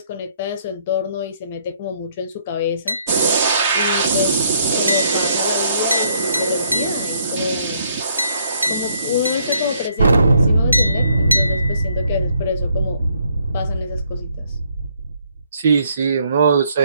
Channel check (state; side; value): inverted; both; correlation -0.69